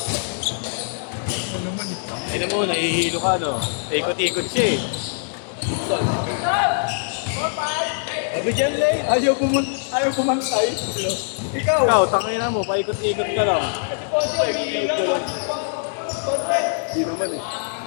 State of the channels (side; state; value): right; silent; digital silence